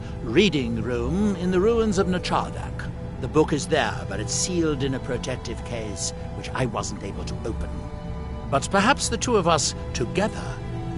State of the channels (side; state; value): both; identical; correlation 1.00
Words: reading room in the ruins of Nachardak. The book is there, but it's sealed in a protective case, which I wasn't able to open. But perhaps the 2 of us, together,